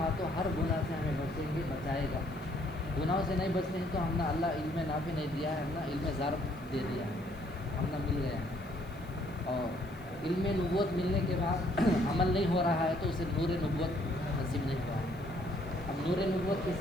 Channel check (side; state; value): right; noise; hiss, 25 dB below the sound